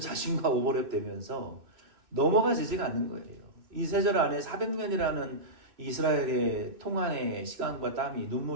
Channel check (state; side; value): late; left; 3.0 ms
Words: 오버랩되면서 넘어가지지가 않는 거예요. 이 3절 안에 400년이라는 이스라엘의 통한의 시간과 땀이